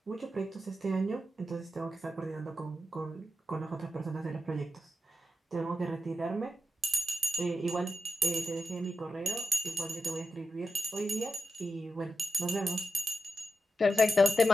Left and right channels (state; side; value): normal; both; correlation 0.89